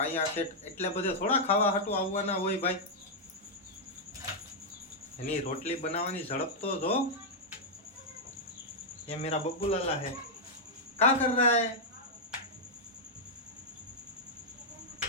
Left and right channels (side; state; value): both; normal; correlation -0.05